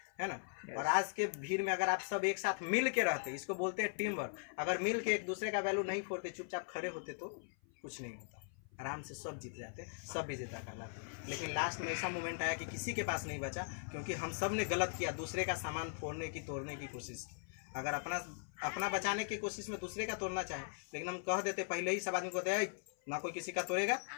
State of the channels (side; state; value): right; silent; 51 dB below the other